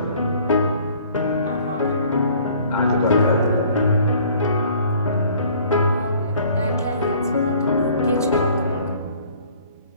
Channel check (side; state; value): both; inverted; correlation -0.54